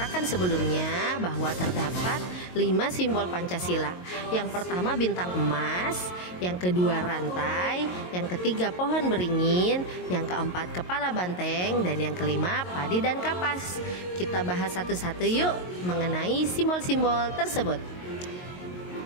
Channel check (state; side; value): late; right; 22 ms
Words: sebelumnya bahwa terdapat 5 simbol Pancasila. Yang pertama bintang emas, yang kedua rantai, yang ketiga pohon beringin, yang keempat kepala banteng, dan yang kelima padi dan kapas. Kita bahas satu-satu yuk mengenai simbol-simbol tersebut.